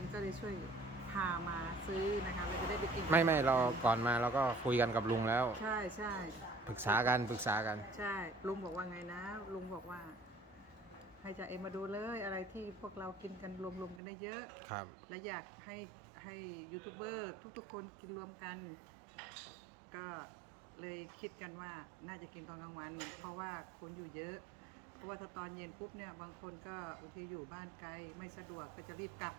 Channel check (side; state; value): left; drops out; at 14.0 s